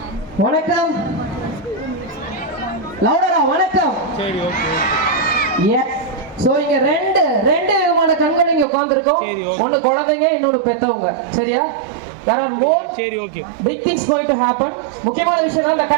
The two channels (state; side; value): drops out; left; at 8.7 s